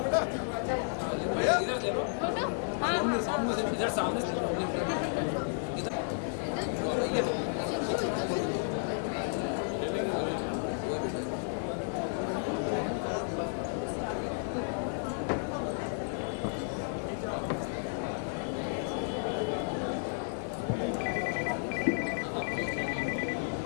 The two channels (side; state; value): right; silent; digital silence